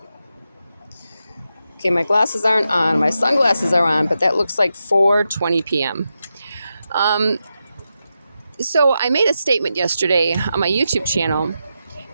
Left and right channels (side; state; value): both; inverted; correlation -0.88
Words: Okay, my glasses aren't on. My sunglasses are on, but that looks like 4:20 p.m. So I made a statement yesterday on my YouTube channel,